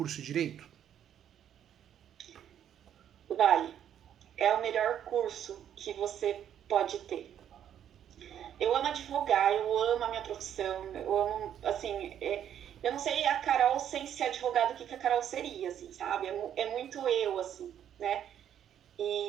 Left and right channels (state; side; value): quieter; left; 9.9 dB